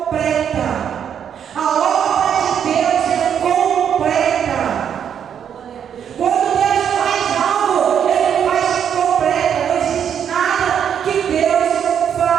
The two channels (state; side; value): quieter; left; 8.4 dB